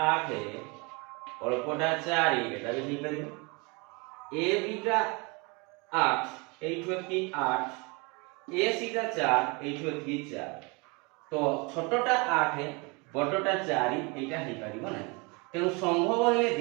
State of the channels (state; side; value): quieter; left; 29.0 dB